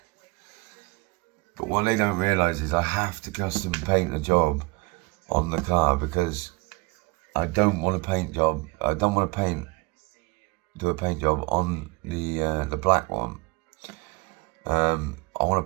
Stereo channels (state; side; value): quieter; left; 26.9 dB